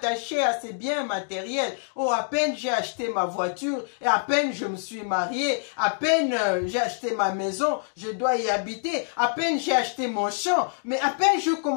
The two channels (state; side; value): silent; right; digital silence